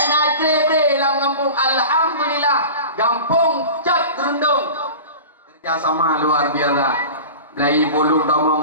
nak tre dalam kampung. Alhamdulillah, kampung cat gerundung. Kerjasama luar biasa. Lai bolong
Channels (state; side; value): inverted; both; correlation -0.34